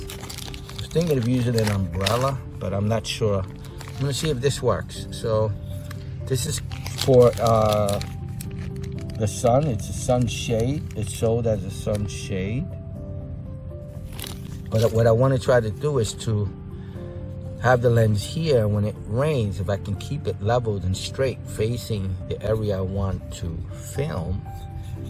was thinking of using an umbrella, but I'm not sure. I'm gonna see if this works. So this is for the sun. It's a sunshade. It's sold as a sunshade. But what I want to try to do is to have the lens here. When it rains, if I can keep it leveled and straight facing the area I want to film,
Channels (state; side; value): identical; both; correlation 1.00